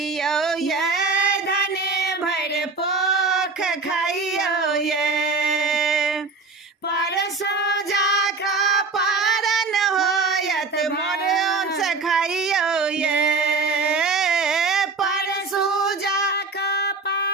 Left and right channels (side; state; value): left; quieter; 4.1 dB